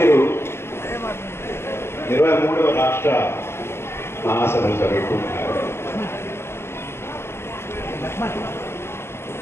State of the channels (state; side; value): late; right; 0.12 ms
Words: 23వ రాష్ట్ర మహాసభలు జరుగుతున్నారు.